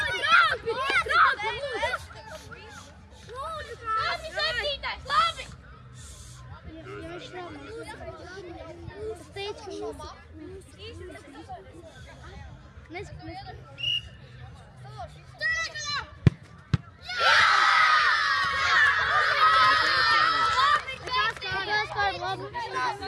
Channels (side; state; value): both; identical; correlation 1.00